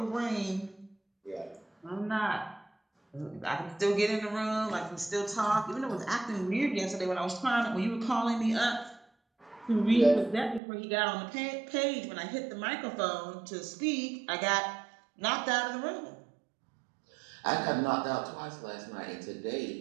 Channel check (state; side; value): drops out; left; at 10.6 s